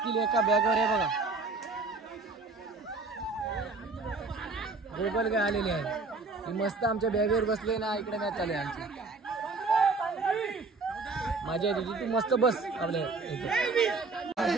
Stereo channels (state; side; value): quieter; left; 3.8 dB